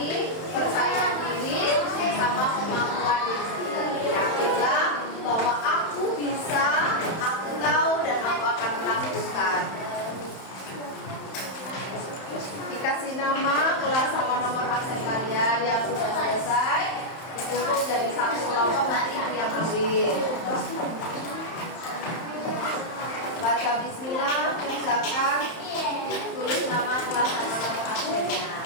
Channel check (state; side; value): late; right; 31 ms